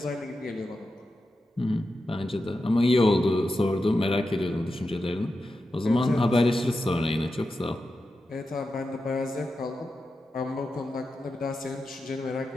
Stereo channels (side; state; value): both; normal; correlation 0.90